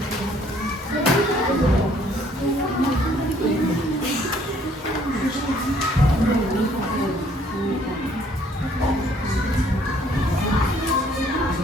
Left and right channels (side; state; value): both; normal; correlation 0.62